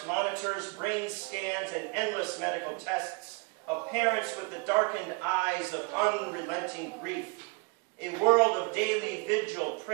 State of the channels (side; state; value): left; quieter; 29.8 dB